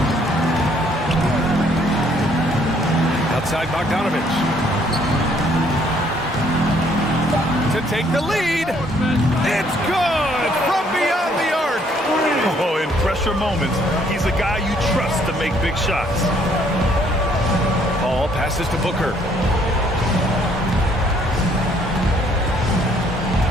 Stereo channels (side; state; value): both; normal; correlation 0.65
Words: Outside Bogdanovich. To take the lead. It's good from beyond the arc. Oh, in pressure moments, he's a guy you trust to make big shots. Paul passes to Booker.